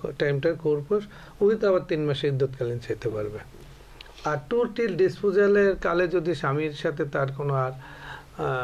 টাইমটার খোরপোশ উইথ আবার 3 মাসে ইদ্যৎকালীন চাইতে পারবে। আর টোটাল ডিসপোজালের কালে যদি স্বামীর সাথে তার কোনো আর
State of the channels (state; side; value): identical; both; correlation 1.00